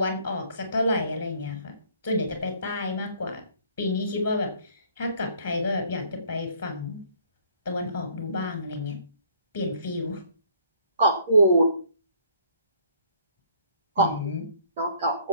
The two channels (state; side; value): inverted; both; correlation -0.60